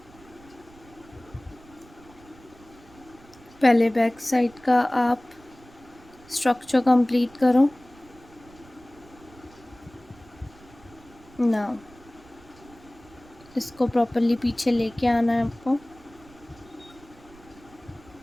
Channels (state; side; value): noise; right; rumble, 24 dB below the sound